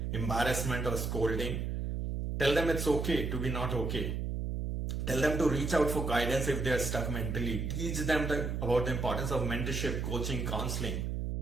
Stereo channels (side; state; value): right; noise; hum, 2 dB below the sound